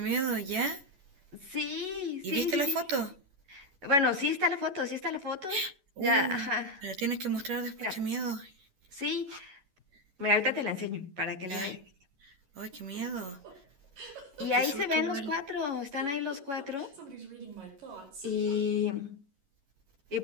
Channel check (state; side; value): late; left; 11 ms